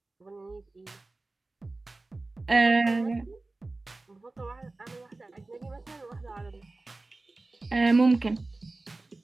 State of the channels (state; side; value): quieter; left; 3.2 dB